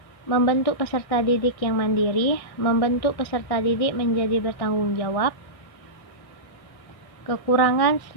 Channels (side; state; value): right; late; 1.6 ms